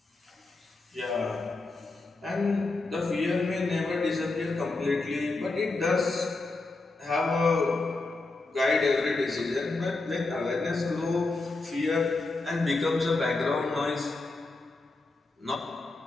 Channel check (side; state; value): right; quieter; 3.4 dB